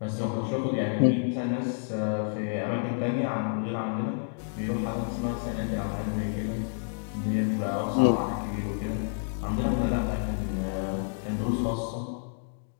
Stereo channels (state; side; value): silent; right; digital silence